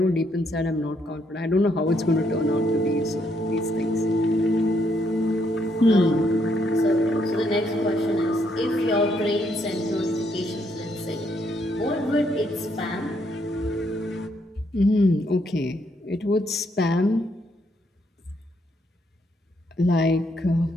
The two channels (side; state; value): both; normal; correlation 0.73